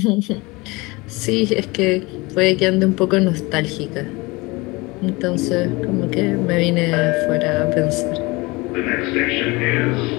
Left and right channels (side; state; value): right; quieter; 24.0 dB